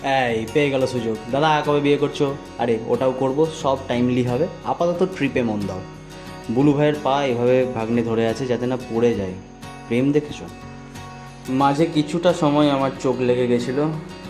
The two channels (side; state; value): both; identical; correlation 1.00